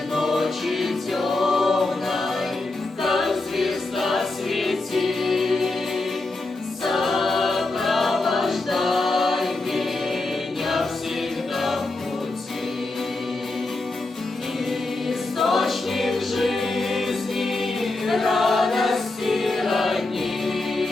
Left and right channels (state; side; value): quieter; right; 3.1 dB